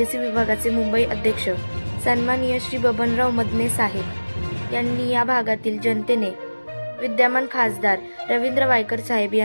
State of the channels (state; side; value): inverted; both; correlation -1.00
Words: विभागाचे मुंबई अध्यक्ष सन्माननीय श्री बबनराव मदने साहेब यांनी या भागातील जनतेने विद्यमान खासदार रवींद्र वायकर साहेब